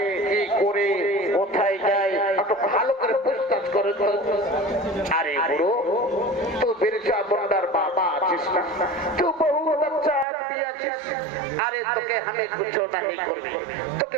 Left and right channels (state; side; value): drops out; left; at 10.2 s